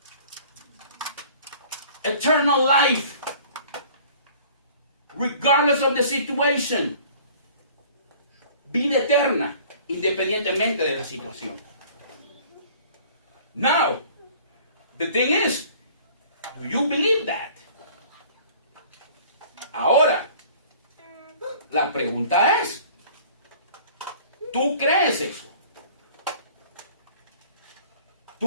Eternal life, regardless of the situation. Vida eterna, independientemente de la situación. Now, the thing is, do you believe that? Ahora, la pregunta es, ¿tú crees eso?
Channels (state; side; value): inverted; both; correlation -0.50